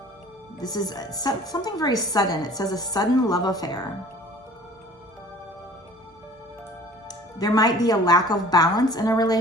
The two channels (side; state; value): both; normal; correlation 0.48